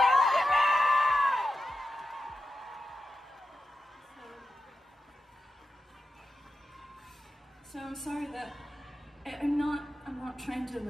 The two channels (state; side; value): normal; both; correlation 0.90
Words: So I'm sorry that I'm not trying to